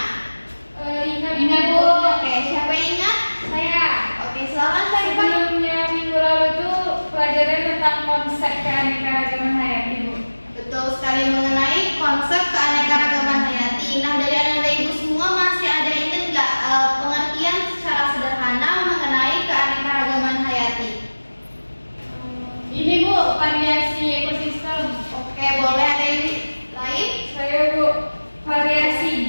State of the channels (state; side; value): inverted; both; correlation -1.00